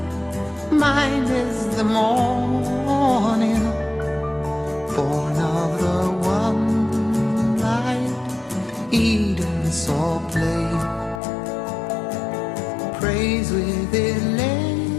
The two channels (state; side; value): drops out; right; at 11.2 s